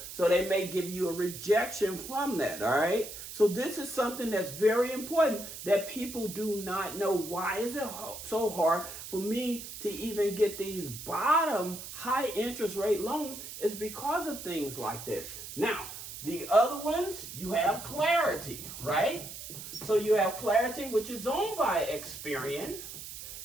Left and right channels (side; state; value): right; noise; hiss, 11 dB below the sound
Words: so they may give you a rejection from that, all right? So this is something that's very important that people do not know. Why is it so hard for me to even get these bottom high interest rate loans? It's because of things like this. Now, the other ones, you have Clarity, right? So you have Clarity, which is owned by Experian.